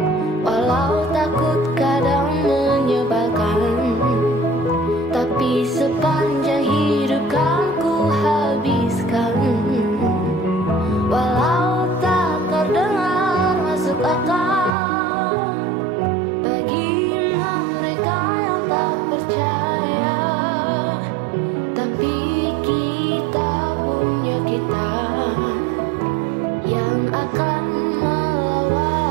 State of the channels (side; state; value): left; drops out; at 14.7 s